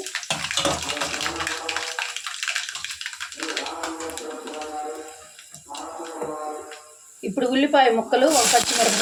ఇప్పుడు ఉల్లిపాయ ముక్కలు, ఒక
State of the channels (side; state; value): both; identical; correlation 1.00